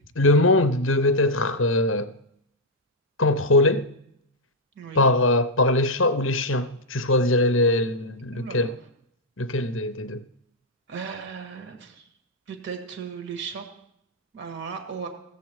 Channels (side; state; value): both; normal; correlation -0.04